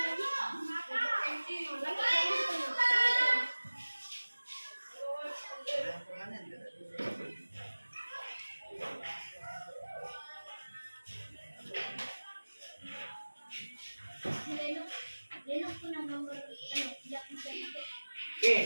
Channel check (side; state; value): both; inverted; correlation -1.00